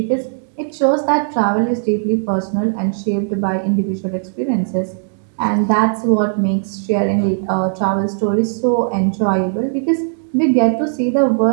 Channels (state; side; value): silent; left; digital silence